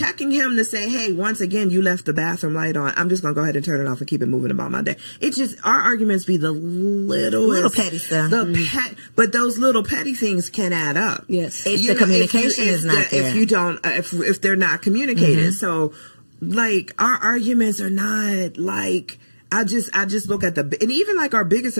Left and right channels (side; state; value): both; inverted; correlation -1.00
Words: him to say, hey, once again, you left the bathroom light on, I'm just going to go ahead and turn it off and keep it moving about my day. It's just, our arguments be the little petty stuff. But those little petty things can add up. Yes. If the communication is not there. If you don't, if they're not communicated. So, like, our arguments are not, like, I just look at and even, like, our biggest